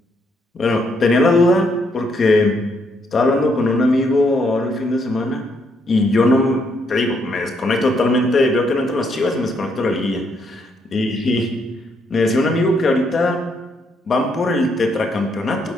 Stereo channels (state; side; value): normal; both; correlation 0.74